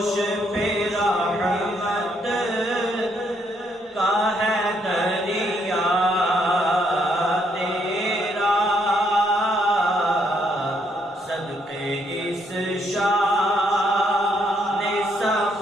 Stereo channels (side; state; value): both; normal; correlation 0.72